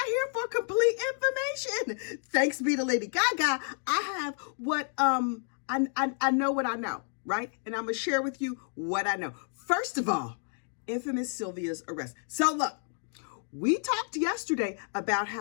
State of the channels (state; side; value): silent; right; 58 dB below the other